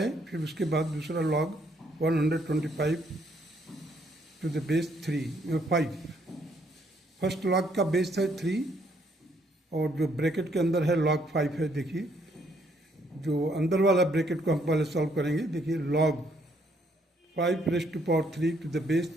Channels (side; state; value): both; normal; correlation 0.69